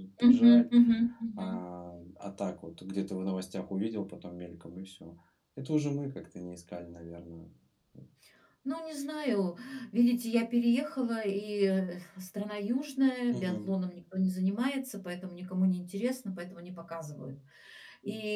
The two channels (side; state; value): both; identical; correlation 1.00